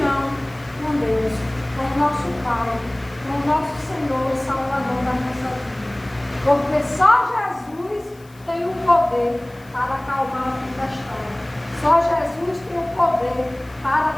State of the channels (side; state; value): left; noise; hiss, 28 dB below the sound